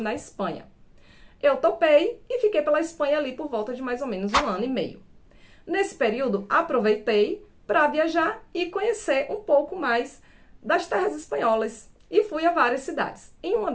Espanha. Eu topei e fiquei pela Espanha ali por volta de mais ou menos 1 ano e meio. Nesse período, aproveitei para viajar e conhecer um pouco mais das terras espanholas e fui a várias cidades. Em uma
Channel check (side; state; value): both; identical; correlation 1.00